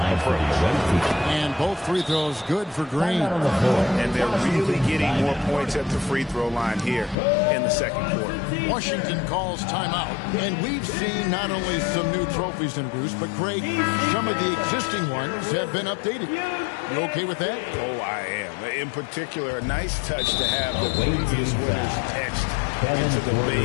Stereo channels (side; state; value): right; drops out; at 7.2 s